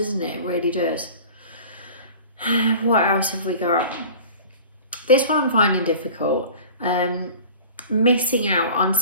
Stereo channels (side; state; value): both; inverted; correlation -0.41